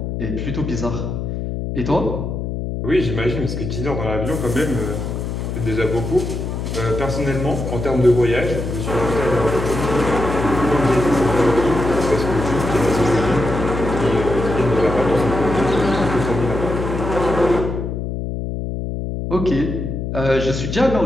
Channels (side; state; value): left; noise; hum, 4 dB below the sound